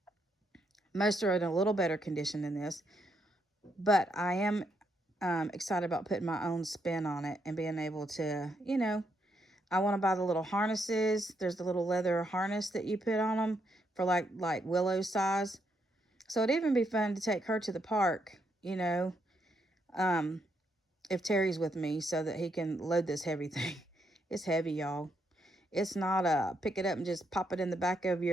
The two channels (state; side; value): normal; both; correlation 0.77